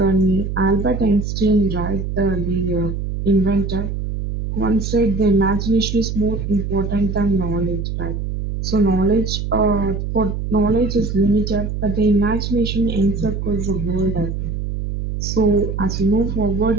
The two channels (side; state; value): right; noise; hum, 4 dB below the sound